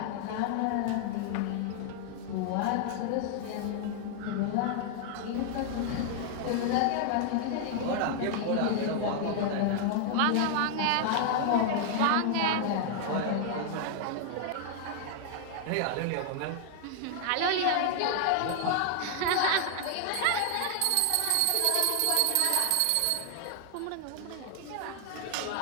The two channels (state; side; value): different; both; correlation 0.00